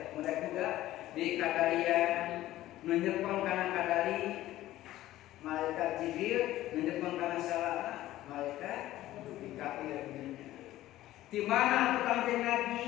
mudah juga di kadarian menyepong kana kadari malaikat Jibril menyepong kana selaan malaikat di kafir di mana Kanjeng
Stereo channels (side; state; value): right; quieter; 15.0 dB